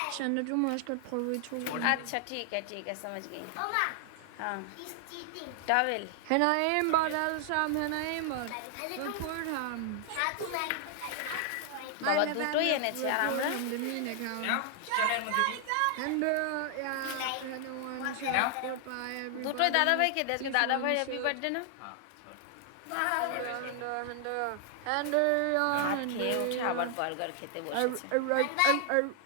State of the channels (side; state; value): both; different; correlation 0.00